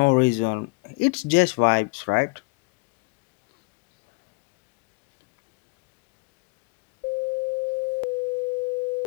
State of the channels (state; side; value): quieter; right; 30.4 dB